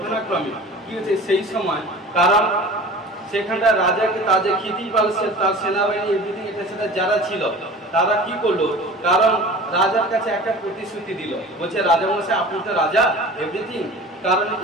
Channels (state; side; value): normal; both; correlation 0.39